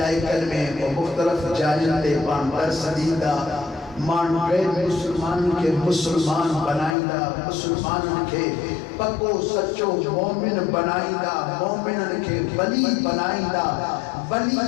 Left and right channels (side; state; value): right; drops out; at 7.0 s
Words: میں وہ مختلف جائزے پانڈر سدیدہ مان گئے مسلمان کے مسلمان بنائیدہ مسلمان کے پکو سچو مومن بنائیدہ مومنن کے ولی بنائیدہ